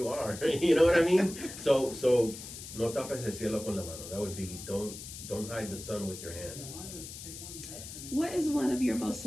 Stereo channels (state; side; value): noise; left; hiss, 11 dB below the sound